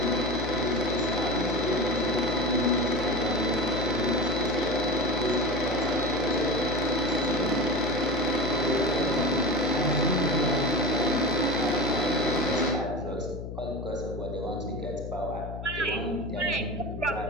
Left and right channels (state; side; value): noise; left; hum, 8 dB below the sound